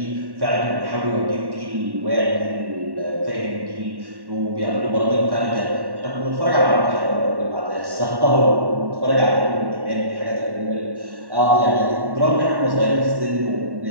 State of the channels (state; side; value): late; left; 1.1 ms